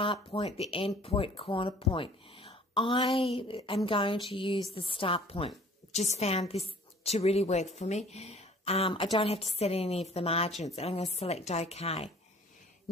point, the end point, corner point. I am going to use the start point. Just found this to really work for me. I don't have to set any of the margins, and I'm going to select OK.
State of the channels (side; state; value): both; normal; correlation 0.51